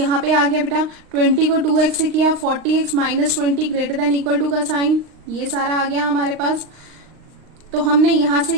पे आ गया बेटा, 20 को 2x से किया, 40x minus 20 greater than equal to का साइन, ये सारा आ गया हमारे पास। तो हमने यहाँ से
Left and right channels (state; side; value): late; left; 39 ms